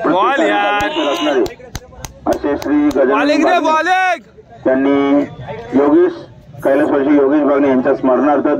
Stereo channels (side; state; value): both; identical; correlation 1.00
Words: असे श्री गजानन त्यांनी कैलासवासी योगेश बागणे यांच्या स्मरणार्थ